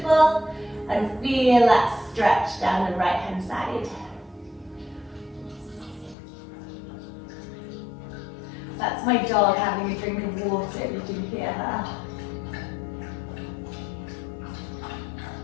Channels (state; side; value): drops out; right; at 6.2 s